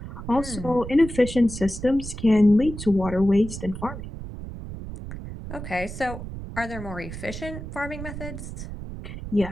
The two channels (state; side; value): noise; right; rumble, 9 dB below the sound